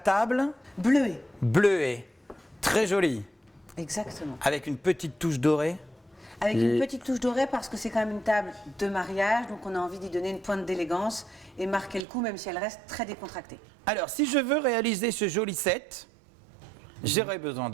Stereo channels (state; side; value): drops out; left; at 12.1 s